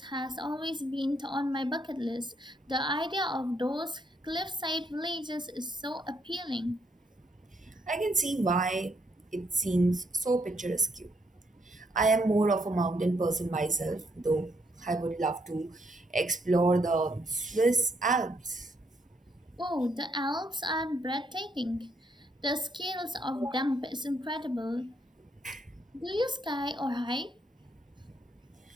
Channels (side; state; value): both; normal; correlation 0.73